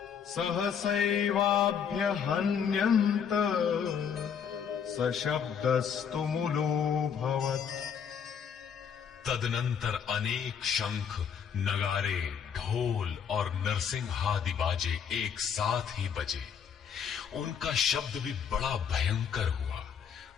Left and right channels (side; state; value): right; quieter; 7.4 dB